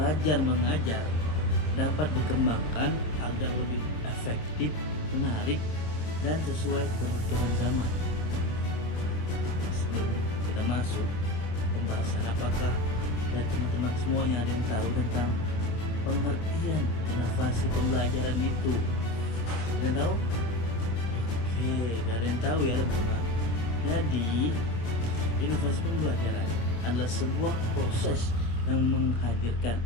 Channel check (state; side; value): late; right; 26 ms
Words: mengajar dapat dikembangkan agar lebih efektif, menarik, dan sesuai kebutuhan zaman. Sebelum kita masuk pembahasan, apakah dan teman-teman semuanya ada yang tahu tentang pengertian inovasi pembelajaran itu? Ada yang tahu? Oke, gak ada yang tahu ya teman-teman. Jadi, inovasi pembelajaran adalah sebuah proses yang menghadirkan